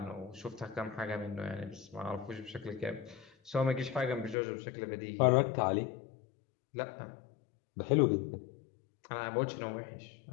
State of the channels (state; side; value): drops out; right; at 4.4 s